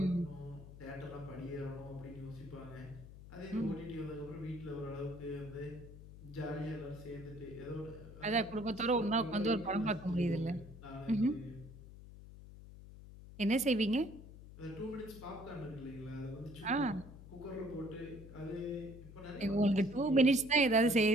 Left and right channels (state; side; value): noise; left; hum, 16 dB below the sound